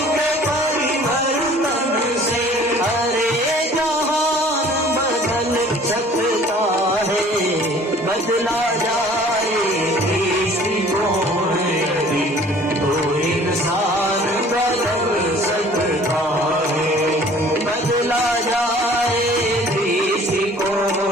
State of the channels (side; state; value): both; normal; correlation 0.52